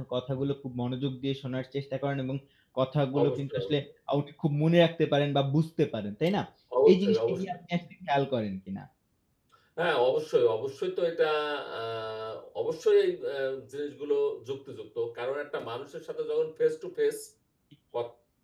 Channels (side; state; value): both; identical; correlation 1.00